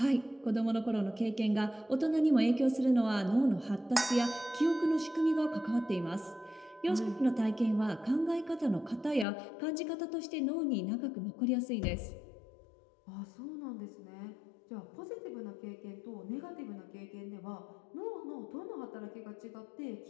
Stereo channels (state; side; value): drops out; right; at 9.2 s